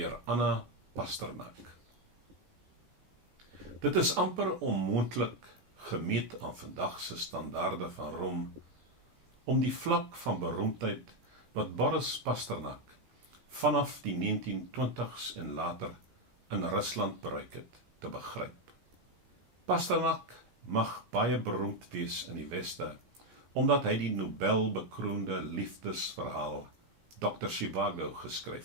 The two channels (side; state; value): left; late; 17 ms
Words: Anna Pasternak. Dit is amper onmoontlik, gemeet aan vandag se standaarde van roem, om die vlak van beroemdheid wat Boris Pasternak vanaf die 1920s en later in Rusland bereik het, te begryp. Pasternak mag baie beroemd wees in die Weste, omdat hy die Nobelbekroonde liefdesverhaal Dr. Zhivago